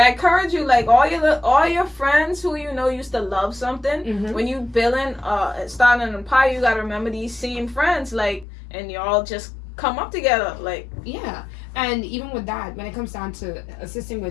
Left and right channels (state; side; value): drops out; right; at 8.5 s